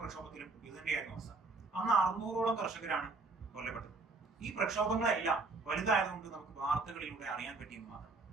പ്രക്ഷോഭത്തിലും ഇത് തന്നെയായിരുന്നു അവസ്ഥ. അന്ന് 600ഓളം കർഷകരാണ് കൊല്ലപ്പെട്ടത്. ഈ പ്രക്ഷോഭങ്ങളെല്ലാം വലുതായതുകൊണ്ട് നമുക്ക് വാർത്തകളിലൂടെ അറിയാൻ പറ്റിയെന്ന് മാത്രം.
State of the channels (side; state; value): left; quieter; 3.6 dB